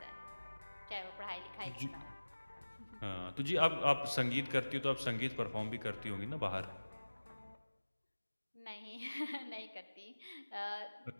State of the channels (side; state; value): both; inverted; correlation -1.00